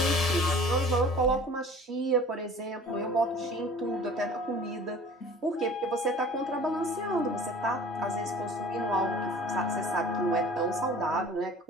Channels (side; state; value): both; normal; correlation 0.46